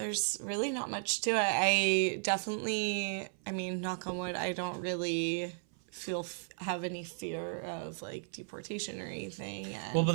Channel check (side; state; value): left; silent; 54 dB below the other